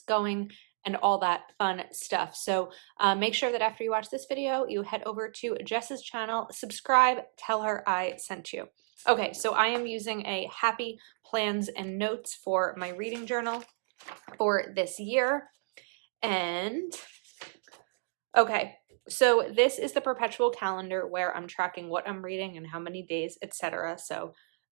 going, and all that fun stuff. So make sure that after you watch this video, you head over to Jess's channel, subscribe, tell her I sent you. Okay, so I am using a Happy Plans and Notes for my reading journal for this year. And okay, so this is the perpetual calendar where I'm tracking what I'm reading and how many days, etc. So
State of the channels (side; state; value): left; silent; digital silence